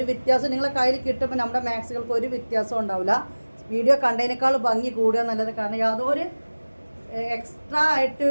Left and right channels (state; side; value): inverted; both; correlation -1.00